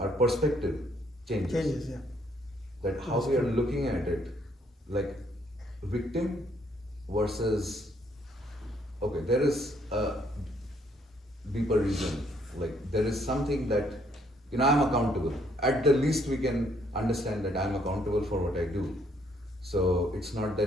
our perspective changes. Changes, yeah. That how we are looking at it, like victim versus, okay, there is a deeper reason. Like there is something that, I'm accountable. At the least we can understand that I'm accountable for what I do. So it's not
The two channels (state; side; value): normal; both; correlation 0.68